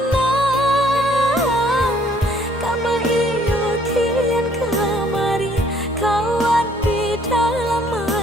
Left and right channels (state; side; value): normal; both; correlation 0.62